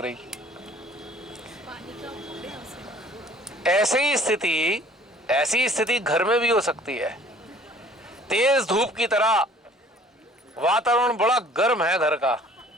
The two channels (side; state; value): both; normal; correlation 0.53